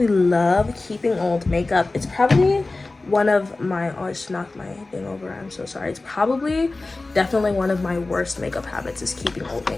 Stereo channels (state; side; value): quieter; right; 3.3 dB